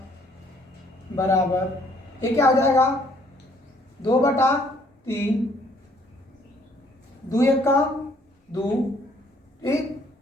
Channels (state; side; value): normal; both; correlation 0.63